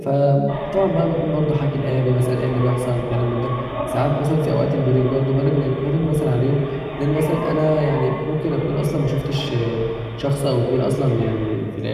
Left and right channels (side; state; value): both; identical; correlation 1.00